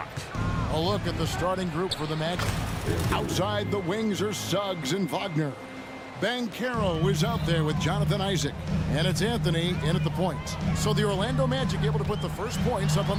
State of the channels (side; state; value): both; identical; correlation 1.00